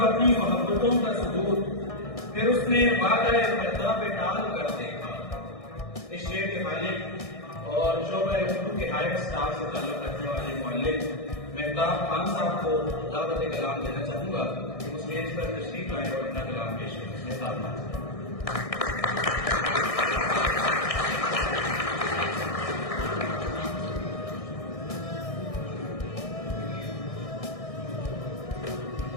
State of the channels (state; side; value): late; right; 1.6 ms